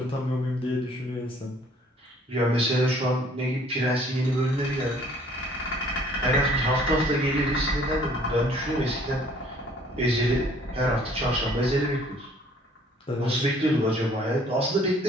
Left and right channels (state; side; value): normal; both; correlation 0.57